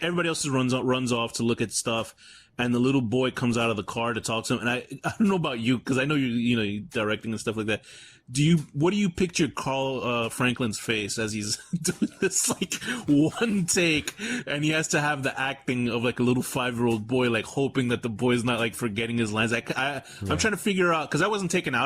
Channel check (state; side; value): identical; both; correlation 1.00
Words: everybody else runs off to look at stuff, and the little boy comes out of the car to talk to him. And I don't know about you, because I know you're directing and stuff like that. What do you picture Carl Franklin's face as he's doing this like one take, and he has to have the acting of like a little 5-year-old boy, like hoping that the boy's not like forgetting his lines. I'm trying to figure out, because I wasn't taken